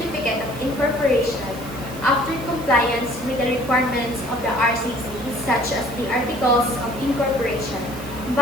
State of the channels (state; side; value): noise; right; hiss, 17 dB below the sound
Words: of incorporation after compliance with the requirements of the RCC such as the Articles of Incorporation,